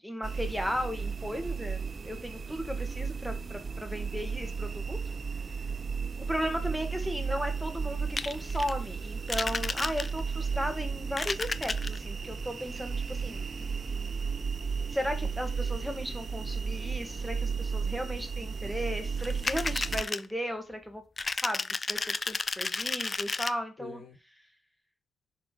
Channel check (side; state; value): both; normal; correlation 0.90